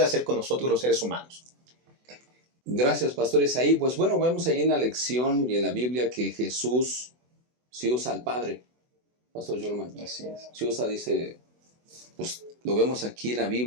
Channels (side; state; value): left; late; 24 ms